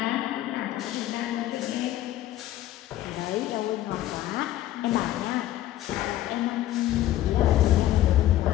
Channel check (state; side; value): quieter; right; 13.8 dB